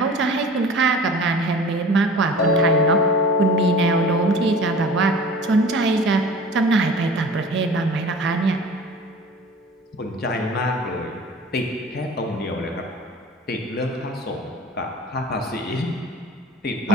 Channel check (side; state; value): both; normal; correlation 0.41